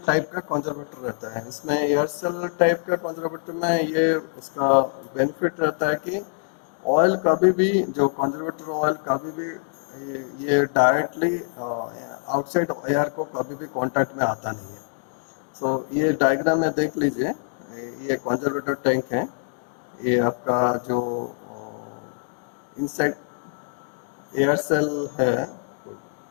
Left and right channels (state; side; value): silent; right; digital silence